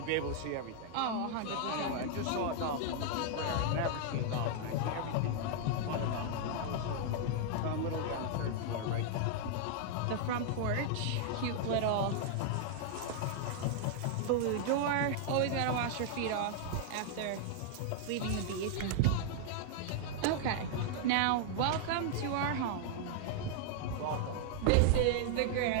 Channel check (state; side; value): different; both; correlation -0.01